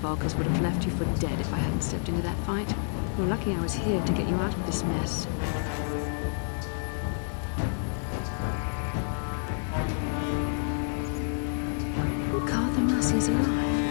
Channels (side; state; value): right; silent; 59 dB below the other